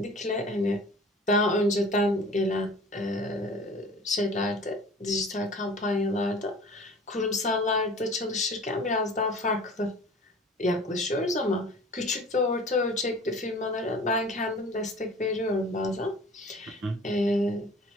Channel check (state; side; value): normal; both; correlation 0.43